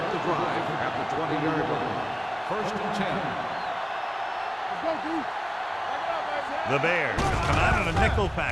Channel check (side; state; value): both; identical; correlation 1.00